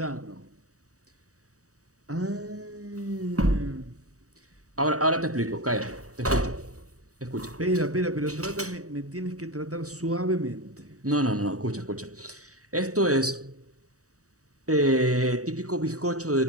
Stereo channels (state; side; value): late; left; 0.66 ms